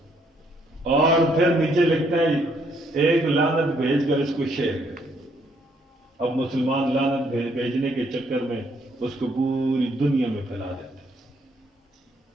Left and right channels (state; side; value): normal; both; correlation 0.69